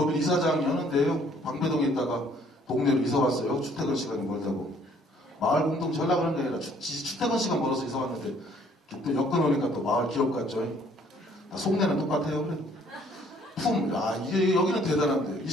이사장 여는데요. 방배동에 있다가 동네로 이사 왔어요. 출퇴근 시간이 멀다고. 마을 공동 전략 그런 게 아니라 출퇴근 시간 멀어서 이사 왔는데, 또 여건 오니까 또 마을 기업 같죠. 속내는 똑같아요. 그래. 여기는 대단한데.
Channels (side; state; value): both; normal; correlation 0.61